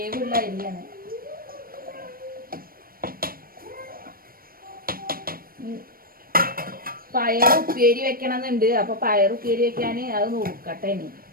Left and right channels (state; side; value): late; left; 0.42 ms